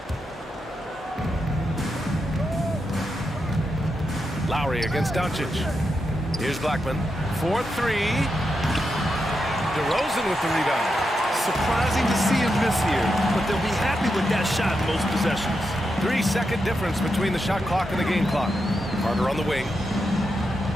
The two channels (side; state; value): both; normal; correlation 0.86